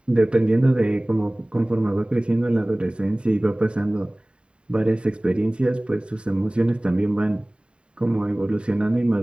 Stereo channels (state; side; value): late; left; 0.053 ms